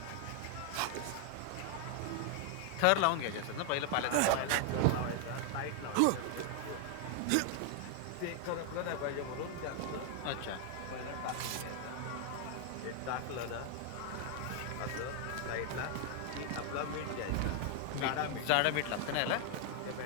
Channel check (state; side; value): different; both; correlation 0.00